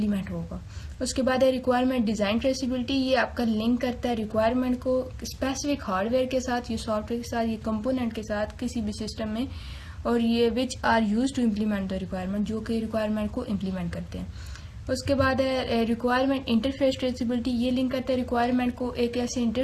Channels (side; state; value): both; identical; correlation 1.00